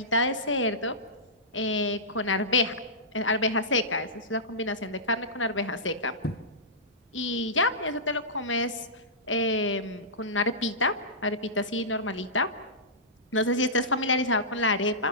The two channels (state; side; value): normal; both; correlation -0.18